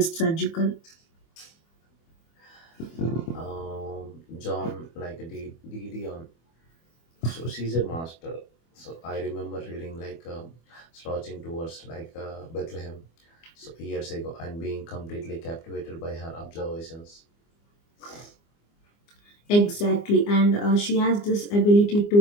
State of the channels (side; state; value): right; late; 24 ms